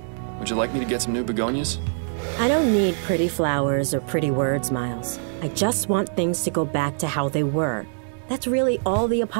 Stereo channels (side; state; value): left; silent; digital silence